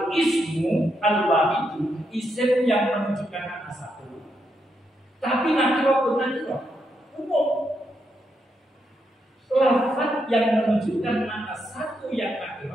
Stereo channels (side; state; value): both; normal; correlation 0.81